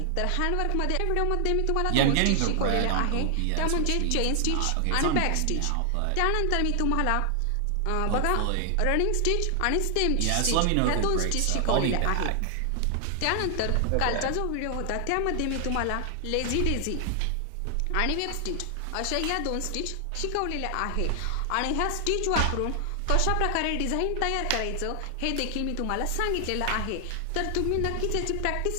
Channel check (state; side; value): different; both; correlation 0.00